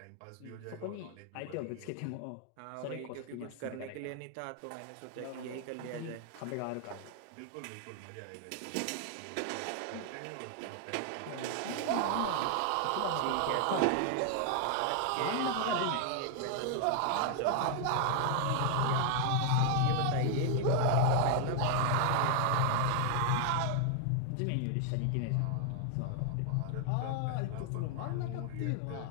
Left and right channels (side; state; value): both; different; correlation 0.00